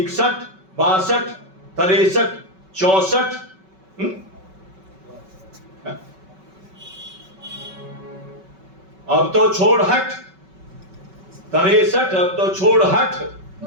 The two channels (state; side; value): late; left; 5.3 ms